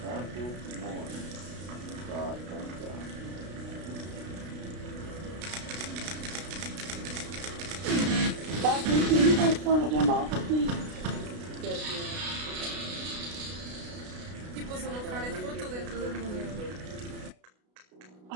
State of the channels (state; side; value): late; left; 33 ms